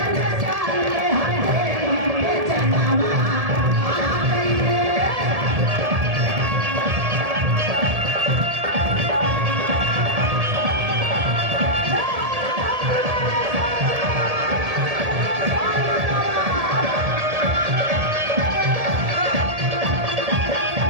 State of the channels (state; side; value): late; left; 1.7 ms